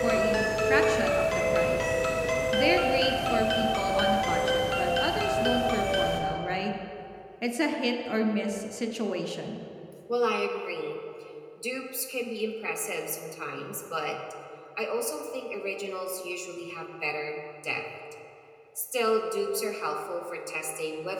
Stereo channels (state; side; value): identical; both; correlation 1.00